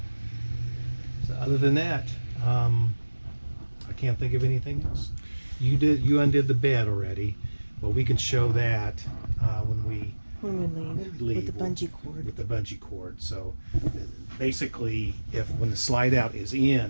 So other than that, I can't think of anything else. You undid the bed already, but we can show that when we leave with the bungee cord. With the bungee cord. So basically, when the slide out is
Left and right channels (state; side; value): inverted; both; correlation -1.00